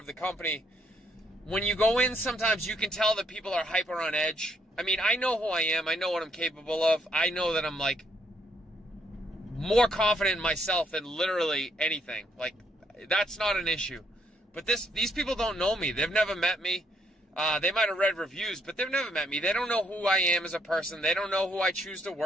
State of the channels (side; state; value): both; normal; correlation 0.72